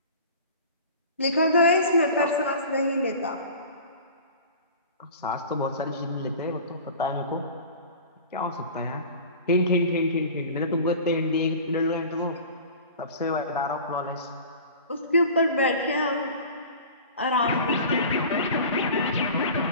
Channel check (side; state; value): both; inverted; correlation -0.39